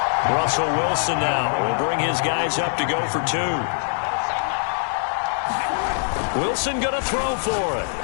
Russell Wilson now will bring his guys up to go for 2. Wilson going to throw for it.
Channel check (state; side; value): silent; right; digital silence